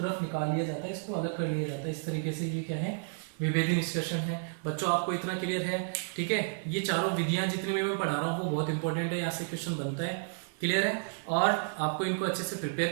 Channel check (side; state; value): left; silent; 57 dB below the other